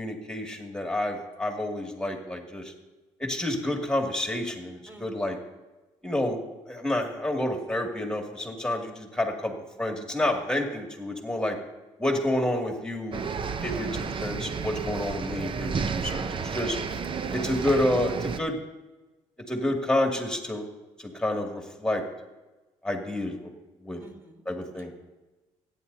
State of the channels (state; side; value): normal; both; correlation 0.75